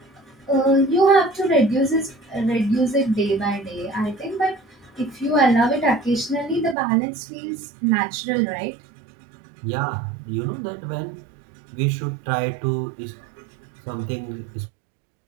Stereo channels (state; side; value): drops out; left; at 6.8 s